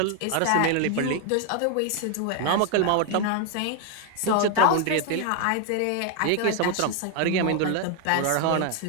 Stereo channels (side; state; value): both; different; correlation 0.01